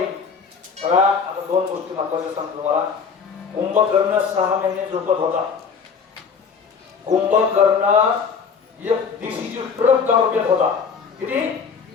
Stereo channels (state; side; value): quieter; right; 5.9 dB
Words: बघा आता 2 गोष्टी महत्वाच्या सांगतो तुम्हाला कुंभकर्ण 6 महिने झोपत होता कुंभकर्ण एक दिवशीची ट्रक दारू पेत होता किती